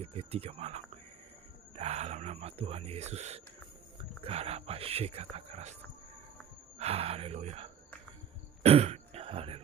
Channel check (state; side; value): quieter; left; 8.7 dB